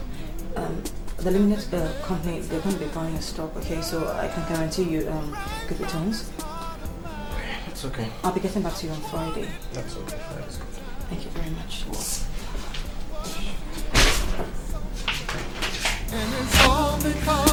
limited company, they're going to be buying your stock, okay? So I can guarantee you good returns. That's okay. I'll be getting back to you on Friday. That's okay. That's good. Thank you very much. And it's all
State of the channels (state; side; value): identical; both; correlation 1.00